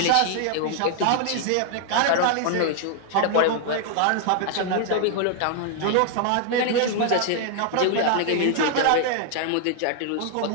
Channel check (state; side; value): different; both; correlation 0.00